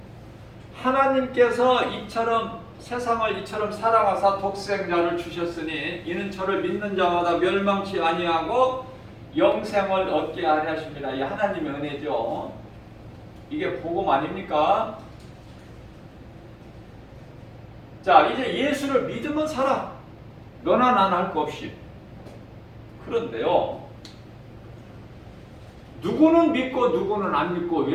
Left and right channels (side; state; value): both; identical; correlation 1.00